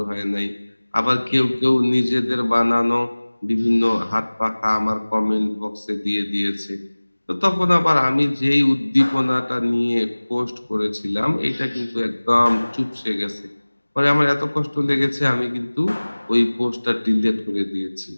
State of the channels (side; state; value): both; inverted; correlation -1.00